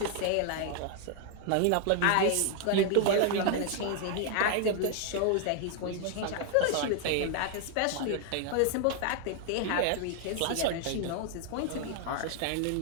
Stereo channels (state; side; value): different; both; correlation 0.00